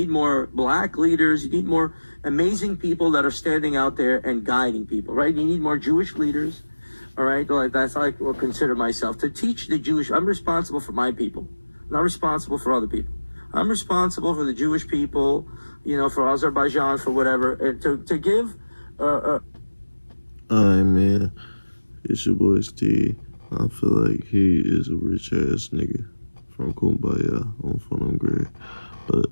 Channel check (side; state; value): both; inverted; correlation -1.00